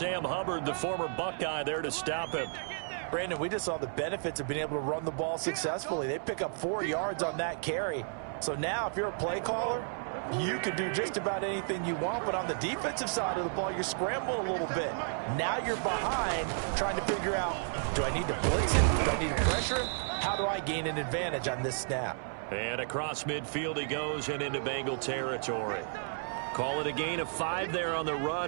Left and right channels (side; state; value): left; silent; 56 dB below the other